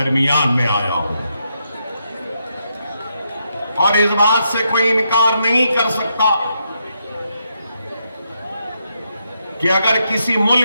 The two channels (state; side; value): inverted; both; correlation -0.81